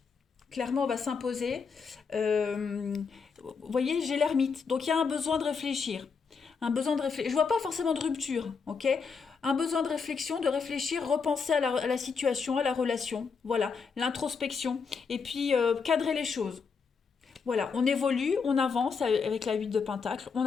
Clairement, on va s'imposer. Vous voyez, j'ai l'ermite, donc il y a un besoin de réfléchir. Un besoin de réfléchir. Je vois pas forcément de rupture, ok? Un besoin de réflexion, de réfléchir, repenser à la situation, à la relation. Voilà, l'introspection. Et puis, cadrer les choses. Voilà, on évolue, on avance avec la 8 de Pentacle, on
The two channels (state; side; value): quieter; right; 5.5 dB